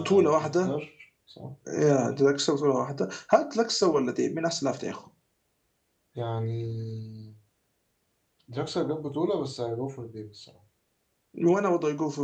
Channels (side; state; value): both; identical; correlation 1.00